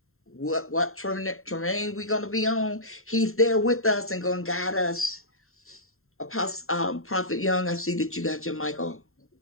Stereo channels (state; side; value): late; right; 0.62 ms